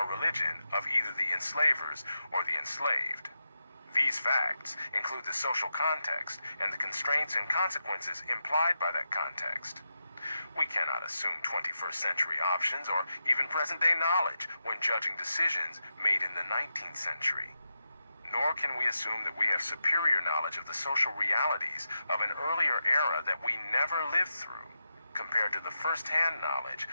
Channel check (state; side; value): inverted; both; correlation -0.87